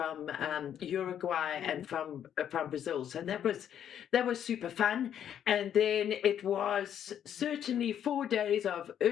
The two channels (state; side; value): quieter; right; 9.6 dB